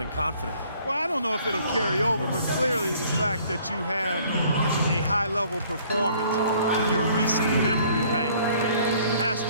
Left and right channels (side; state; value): both; inverted; correlation -0.58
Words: confident. Well, I don't know if it'll carry over, but clearly the fact that you have a high-level performance in your recent memory bank has